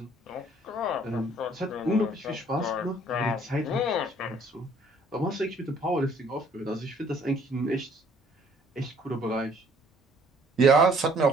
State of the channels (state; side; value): normal; both; correlation 0.59